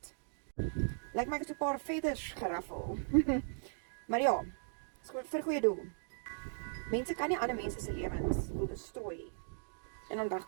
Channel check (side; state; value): left; silent; digital silence